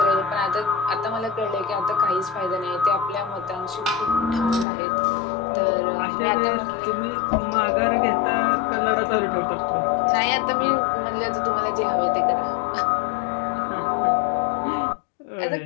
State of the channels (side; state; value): right; drops out; at 4.7 s